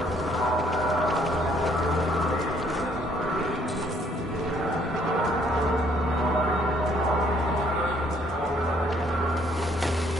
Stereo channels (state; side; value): normal; both; correlation 0.65